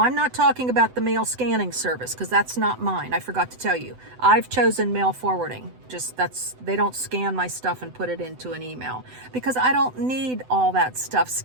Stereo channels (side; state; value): left; late; 7.9 ms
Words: I'm not talking about the mail scanning service because that's not mine. I forgot to tell you. I've chosen mail forwarding. They don't scan my stuff and put it into an email because I don't need all that stuff